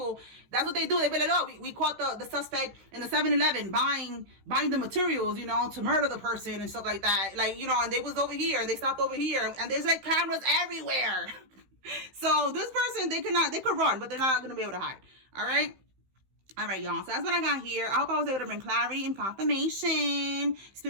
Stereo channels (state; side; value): late; left; 15 ms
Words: that's what they do. They be like, oh, we caught the suspect in the 7-Eleven buying the materials, you know, to murder the person and stuff like that. Like, you know, and they was over here, they stopped over here, and there's like cameras everywhere. So this person, they could run, but they're not gonna be able to hide. All right, y'all. So that's what I got here. I hope I was able to bring clarity and confirmation.